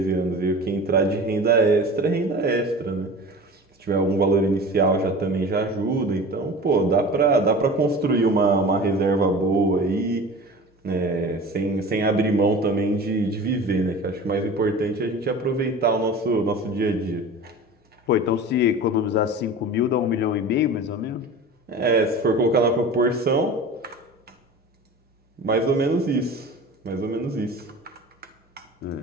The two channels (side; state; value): both; normal; correlation 0.36